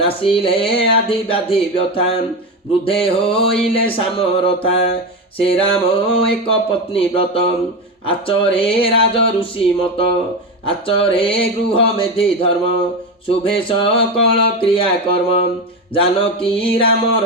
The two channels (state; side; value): normal; both; correlation 0.17